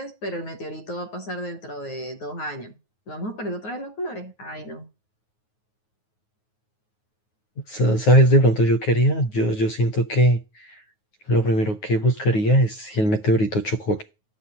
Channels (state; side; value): late; right; 9.4 ms